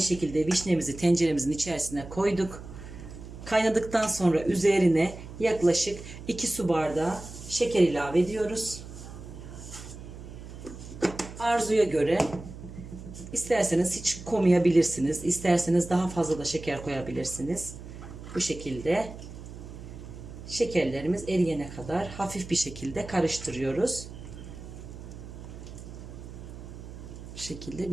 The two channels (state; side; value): noise; right; hum, 13 dB below the sound